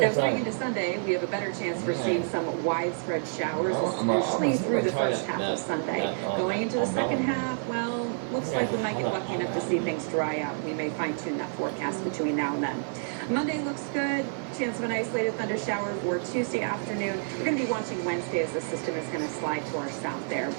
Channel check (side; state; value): left; silent; digital silence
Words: going into Sunday, we have a better chance for seeing some widespread showers, especially through the first half of Sunday. Going into the second half, well, looks like we might get lucky enough to see things dry out. We may fine-tune that forecast between now and then. Monday looks good. Chance of an isolated thunder shower for Tuesday afternoon. We're going to be watching Wednesday as the system is going to slide to our south there.